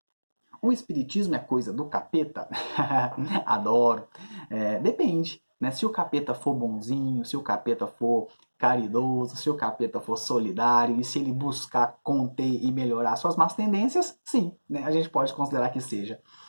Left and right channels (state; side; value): inverted; both; correlation -1.00